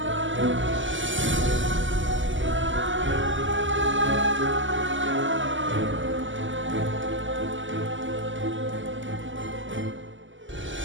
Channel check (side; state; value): left; late; 0.55 ms